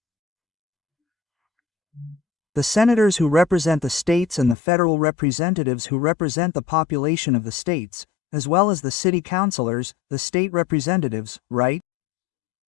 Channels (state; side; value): drops out; right; at 4.5 s